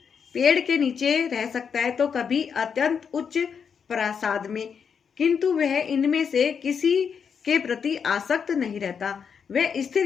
पेड़ के नीचे रह सकता है तो कभी अत्यंत उच्च प्रासाद में, किंतु वह इनमें से किसी के प्रति आसक्त नहीं रहता। वह स्थिर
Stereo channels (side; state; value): right; quieter; 6.7 dB